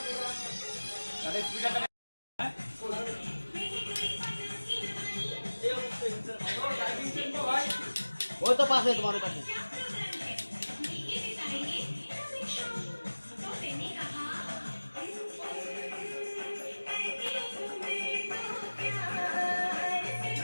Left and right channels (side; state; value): both; inverted; correlation -1.00